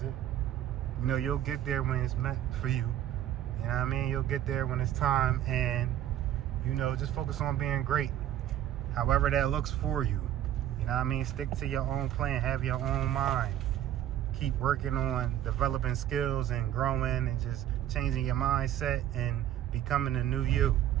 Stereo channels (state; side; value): quieter; left; 11.7 dB